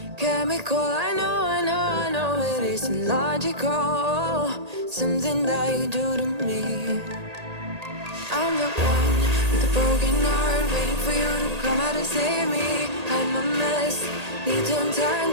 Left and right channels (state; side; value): late; left; 1.8 ms